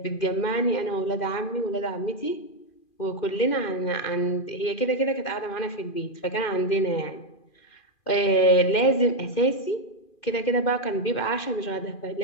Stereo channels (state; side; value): late; right; 2.4 ms